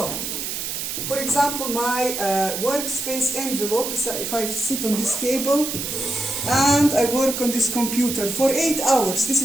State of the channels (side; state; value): right; noise; hiss, 4 dB below the sound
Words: for example, my workspace envelope is if I sit on this table and I work on this computer for 8 hours. This